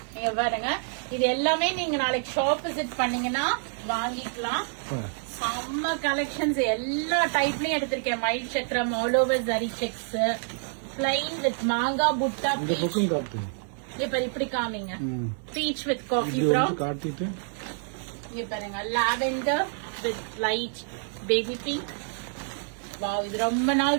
நீங்க பாருங்க, இது எல்லாமே நீங்க நாளைக்கு ஷாப் விசிட் பண்ணீங்கன்னா வாங்கிக்கலாம். செம்ம கலெக்ஷன்ஸ் எல்லா டைப்லயும் எடுத்திருக்கேன். மயில் சக்கரம், all over zari sex, plain with மாங்கா புட்டா. இப்ப இப்படி காமிங்க. பீச் வித் காஃபி ப்ரௌன் காட்டிட்டு இங்க பாருங்க. Lavender with light baby pink. Wow, இது ரொம்ப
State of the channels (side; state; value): left; silent; 60 dB below the other